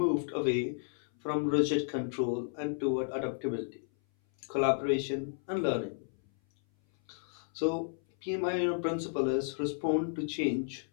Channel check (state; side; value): silent; right; 56 dB below the other